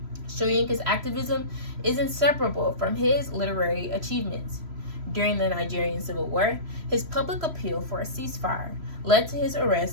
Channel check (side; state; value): left; late; 3.0 ms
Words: Soyinka's activism is inseparable from his literary achievements. During the Nigerian Civil War, his public appeal for a ceasefire led to his